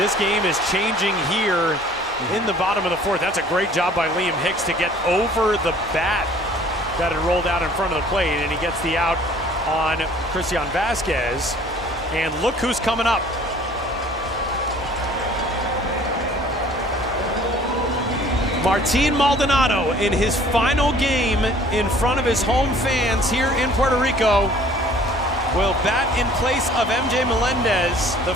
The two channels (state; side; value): normal; both; correlation 0.53